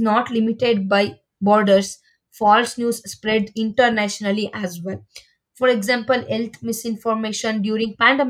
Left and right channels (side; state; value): both; identical; correlation 1.00